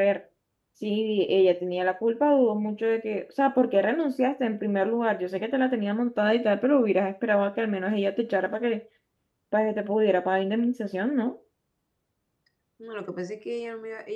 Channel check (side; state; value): both; identical; correlation 1.00